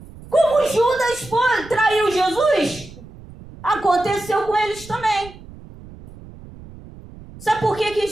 Como Judas traiu Jesus, aconteceu com eles também. Sabe por que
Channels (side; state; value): right; noise; rumble, 18 dB below the sound